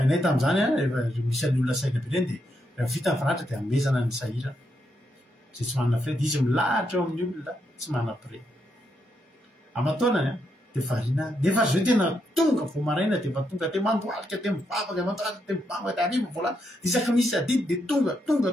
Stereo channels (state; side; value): normal; both; correlation 0.80